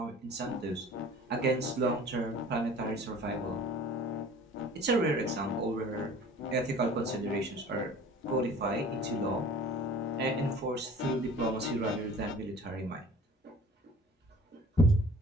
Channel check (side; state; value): both; normal; correlation 0.46